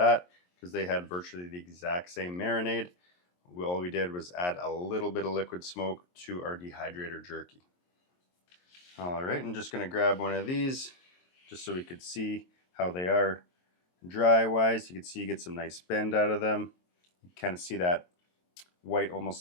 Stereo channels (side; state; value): right; late; 22 ms